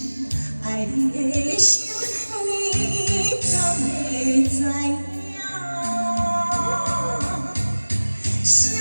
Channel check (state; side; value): inverted; both; correlation -1.00